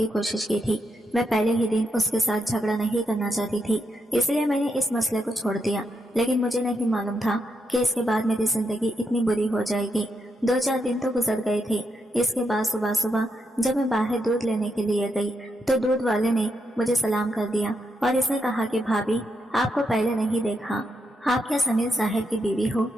कोशिश की थी। मैं पहले ही दिन उसके साथ झगड़ा नहीं करना चाहती थी, इसलिए मैंने इस मसले को छोड़ दिया। लेकिन मुझे नहीं मालूम था कि इसके बाद मेरी जिंदगी इतनी बुरी हो जाएगी। 2-4 दिन तो गुजर गए थे। इसके बाद सुबह सुबह जब मैं बाहर दूध लेने के लिए गई तो दूध वाले ने मुझे सलाम कर दिया और इसने कहा कि भाभी, आपको पहले नहीं देखा, आप क्या समीर साहब की बीवी हो?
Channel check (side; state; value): both; normal; correlation 0.81